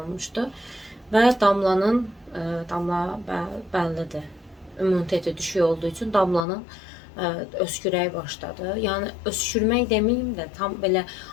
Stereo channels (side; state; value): right; drops out; at 6.5 s